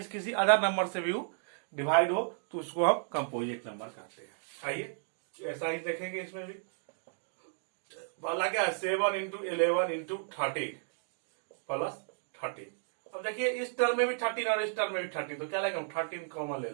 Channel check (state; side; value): silent; left; digital silence